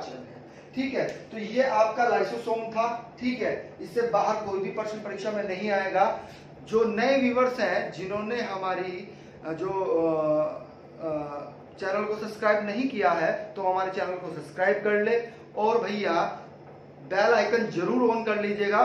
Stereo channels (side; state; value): both; identical; correlation 1.00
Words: है। ठीक है, तो ये आपका लाइसोसोम था। ठीक है, इससे बाहर कोई भी प्रश्न परीक्षा में नहीं आएगा। जो नए व्यूवर्स हैं, जिन्होंने हमारी जो चैनल को सब्सक्राइब नहीं किया है, तो हमारे चैनल को सब्सक्राइब कर ले, और भैया बेल आइकन जरूर ऑन कर लीजिएगा,